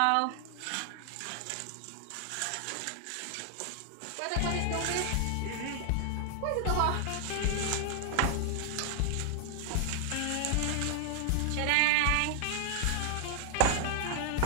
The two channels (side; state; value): both; different; correlation 0.00